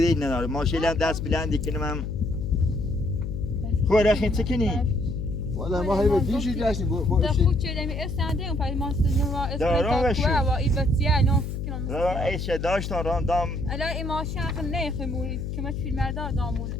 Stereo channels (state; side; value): noise; left; hum, 4 dB below the sound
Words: نداره ماشین هم دست بلندی کنم هم خوره خیلی چکنی والا ما هی به دیشی جاشیم با اشی خود چه دمی استنده اون پای ما سنوا اسمتا کوه و ایبتیه نه سکنم مثلا ایش داشتن راندام الان این ماشین آخر نخمونی که من فیلم مردار دامونه